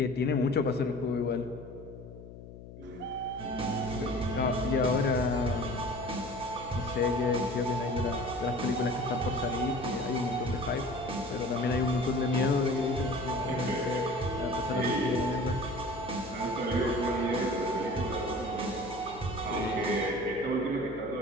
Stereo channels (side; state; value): left; noise; hum, 15 dB below the sound